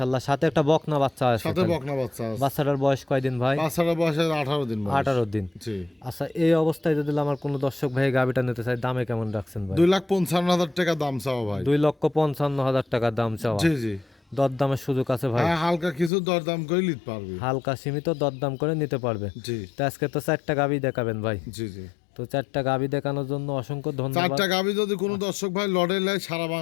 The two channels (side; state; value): right; drops out; at 16.1 s